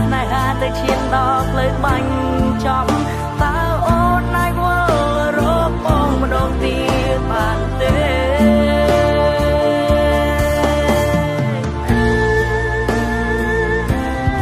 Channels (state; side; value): identical; both; correlation 1.00